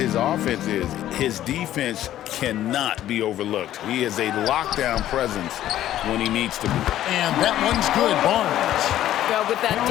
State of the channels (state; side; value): quieter; right; 12.7 dB